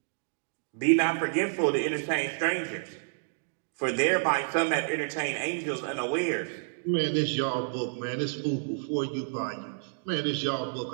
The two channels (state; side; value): silent; left; digital silence